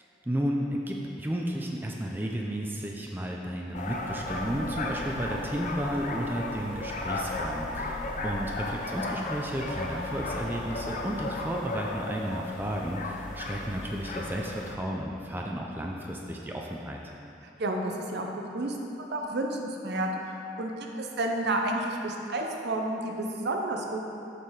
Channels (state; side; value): normal; both; correlation 0.49